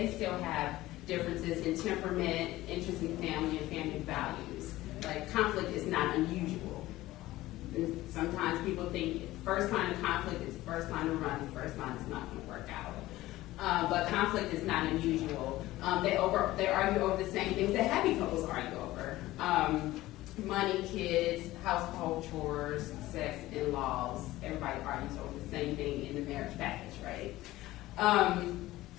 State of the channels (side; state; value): right; quieter; 16.9 dB